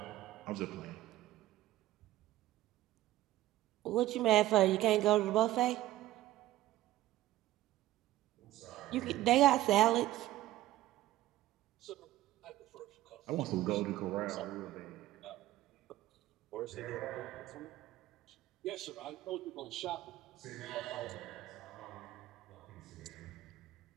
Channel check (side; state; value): left; quieter; 15.2 dB